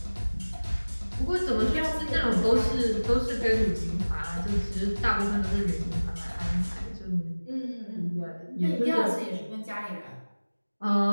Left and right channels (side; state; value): both; inverted; correlation -1.00